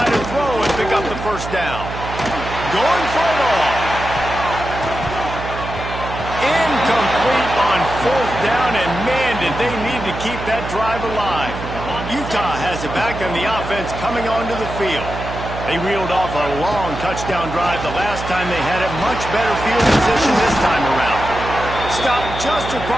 to throw and pick up the first down. Going for it all. Incomplete on fourth down, and man, did they need to keep that drive alive. Utah has it back on the offense coming onto the field. They reeled off a long touchdown drive the last time. They had a much better field position this time around. Stopped just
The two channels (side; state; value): right; noise; hum, 8 dB below the sound